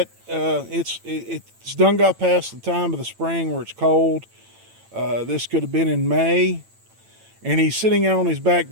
It's done got past the time of the spring where it's cold. This could have been in May, and he's sitting out on his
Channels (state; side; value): late; left; 8.9 ms